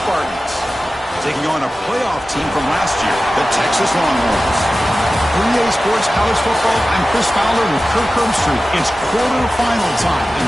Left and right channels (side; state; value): both; normal; correlation 0.95